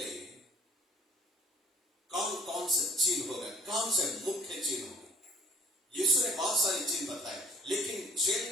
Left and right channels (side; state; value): both; normal; correlation 0.54